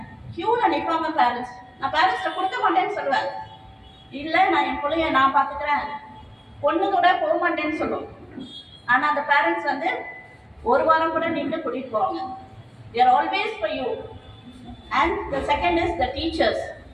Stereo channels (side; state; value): both; identical; correlation 1.00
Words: கியூல நிற்பாங்க பேரண்ட்ஸ். நான் பேரண்ட்ஸ்ட கொடுக்க மாட்டேன்னு சொல்லுவேன். இல்ல நான் என் பிள்ளைய நான் பாத்துக்கிறேன், பொண்ணு கூட போக மாட்டேன்னு சொல்லுவோம். ஆனா அந்த பேரண்ட்ஸ் வந்து ஒரு வாரம் கூட நின்று கூட்டிட்டு போவாங்க. they are always for you. And the second is the teachers.